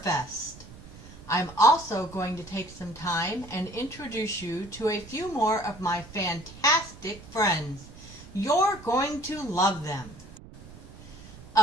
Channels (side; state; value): right; noise; rumble, 18 dB below the sound